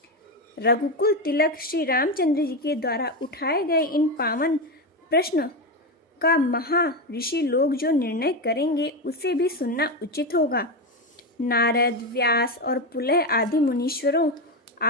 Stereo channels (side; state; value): both; normal; correlation 0.13